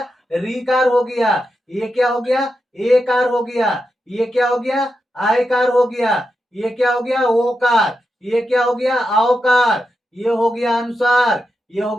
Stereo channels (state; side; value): normal; both; correlation 0.87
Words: रीकार हो गया। ये क्या हो गया, एकार हो गया। ये क्या हो गया, आयकार हो गया। ये क्या हो गया, ओकार। ये क्या हो गया, औकार। ये हो गया अनुसार। ये हो